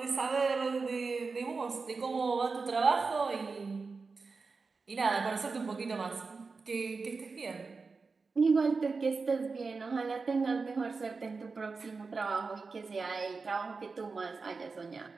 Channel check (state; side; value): quieter; left; 4.4 dB